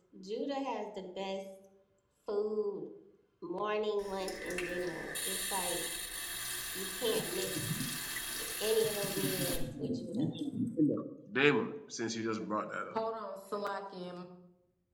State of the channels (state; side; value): identical; both; correlation 1.00